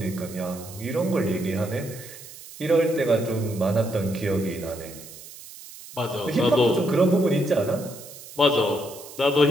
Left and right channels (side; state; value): right; noise; hiss, 16 dB below the sound